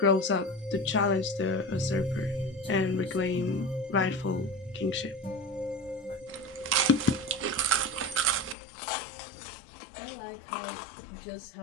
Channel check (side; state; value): right; drops out; at 8.6 s